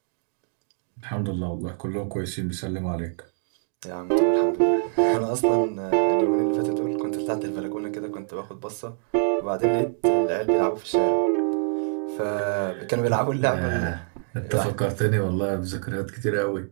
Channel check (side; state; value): left; silent; digital silence